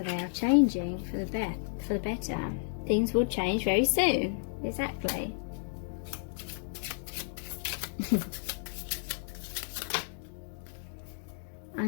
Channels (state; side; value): silent; right; digital silence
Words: they are changing for the better. Things will change very soon. Exactly.